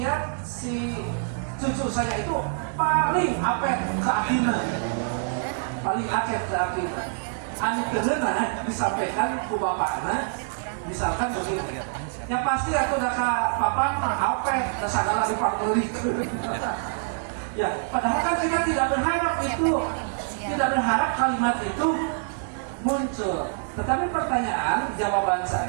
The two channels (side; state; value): left; silent; digital silence